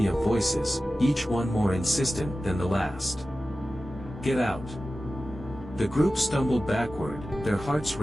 of voices, each one more insistent than the last. "Get out!" The group stumbled backward, their hearts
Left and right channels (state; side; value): normal; both; correlation 0.95